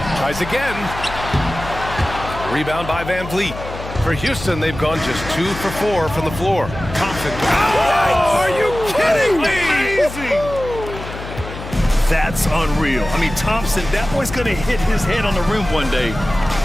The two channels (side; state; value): left; noise; hum, 11 dB below the sound